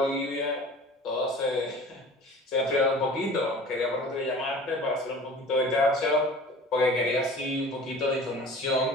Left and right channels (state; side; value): normal; both; correlation 0.42